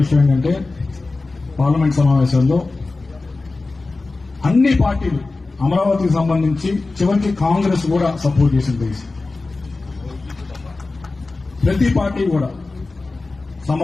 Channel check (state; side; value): quieter; right; 3.5 dB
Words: విషయం ఏంటంటే పార్లమెంట్ సమావేశంలో అన్ని పార్టీలు అమరావతికి సంబంధించి చివరికి కాంగ్రెస్ కూడా సపోర్ట్ చేసింది. ప్రతి పార్టీ కూడా